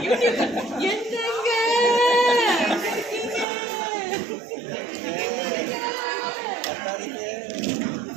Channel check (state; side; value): drops out; left; at 3.5 s